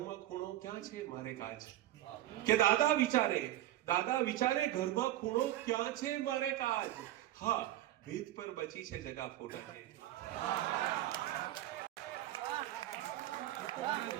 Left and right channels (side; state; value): left; quieter; 14.1 dB